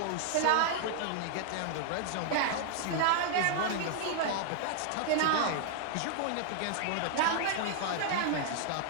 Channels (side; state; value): both; different; correlation -0.01